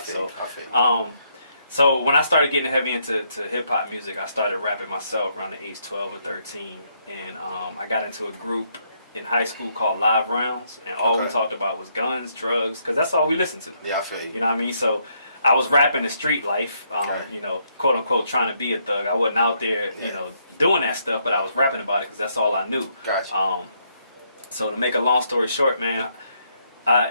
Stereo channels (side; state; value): both; inverted; correlation -0.74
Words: So when I started getting heavy into hip-hop music, I started rapping myself around the age 12 or 13. And I got into a group in high school called Live Rounds, and all we talked about was guns, drugs, because that's all we listened to. Yeah, I feel you. You know what I mean? So I was rapping the street life, you know, quote unquote, trying to be a thug. I wasn't out there, you know, doing that stuff, but I was rapping about it because that's all I knew. Gotcha. So to make a long story short, man,